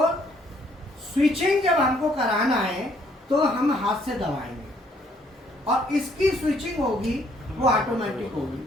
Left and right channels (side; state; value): both; normal; correlation 0.66